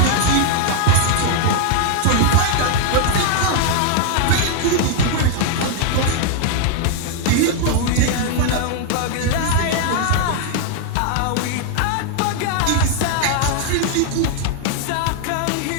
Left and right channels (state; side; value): different; both; correlation 0.00